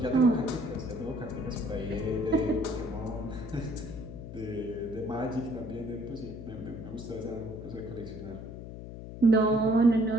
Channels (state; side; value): noise; left; hum, 11 dB below the sound